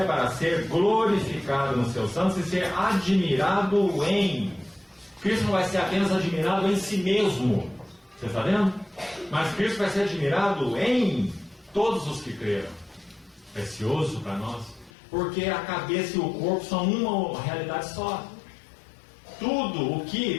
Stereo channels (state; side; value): drops out; right; at 14.9 s